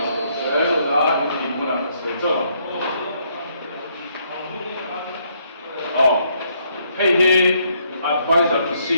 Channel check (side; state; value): both; inverted; correlation -0.71